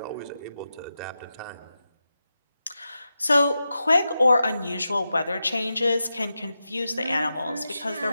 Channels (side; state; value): both; inverted; correlation -0.90